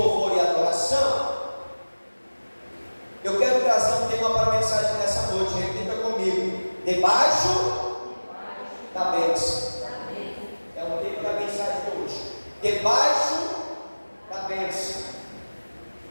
e adoração, eu quero trazer um tema para a mensagem nessa noite. Repita comigo: debaixo da bênção. É o tema da mensagem de hoje. Debaixo da bênção.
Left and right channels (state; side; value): inverted; both; correlation -1.00